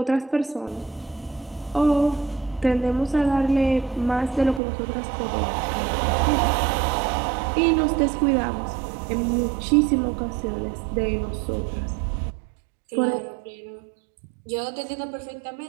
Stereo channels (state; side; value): drops out; left; at 4.6 s